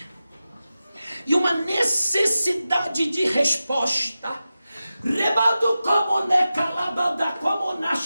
e uma necessidade de resposta. Rebado como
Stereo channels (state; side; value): inverted; both; correlation -0.93